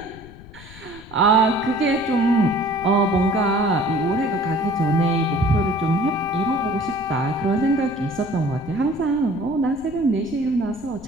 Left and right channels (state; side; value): noise; left; rumble, 19 dB below the sound